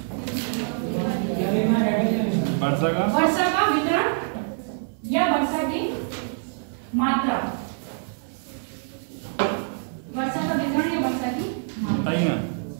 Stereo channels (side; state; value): left; silent; digital silence